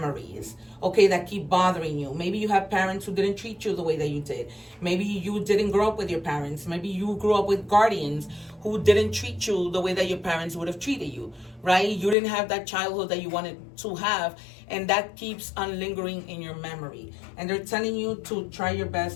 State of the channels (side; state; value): right; drops out; at 12.2 s